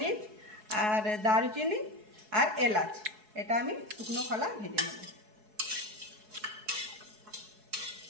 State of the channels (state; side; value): late; left; 4.7 ms